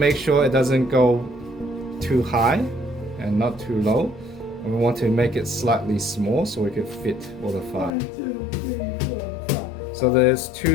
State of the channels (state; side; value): drops out; right; at 7.9 s